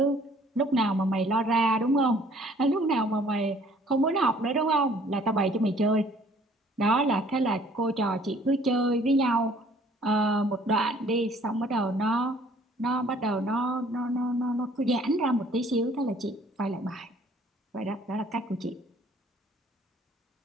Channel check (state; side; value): normal; both; correlation 0.57